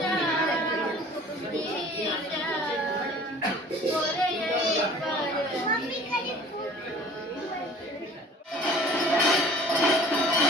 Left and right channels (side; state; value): both; normal; correlation 0.47